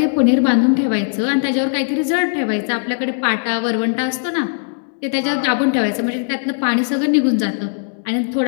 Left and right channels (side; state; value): right; silent; digital silence